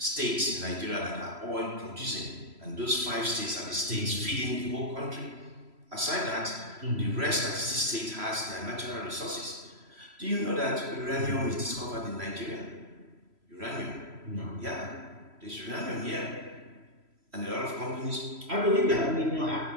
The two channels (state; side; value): late; left; 3.0 ms